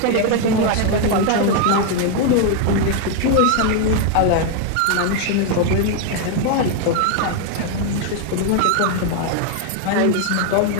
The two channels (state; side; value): different; both; correlation 0.01